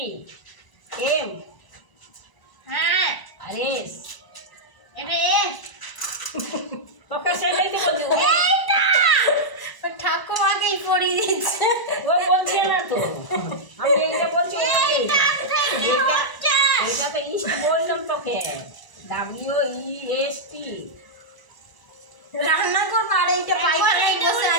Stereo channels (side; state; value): right; late; 1.0 ms